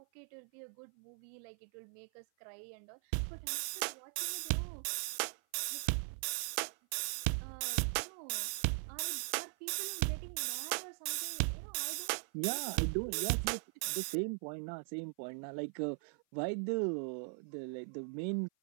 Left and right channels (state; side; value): silent; left; 51 dB below the other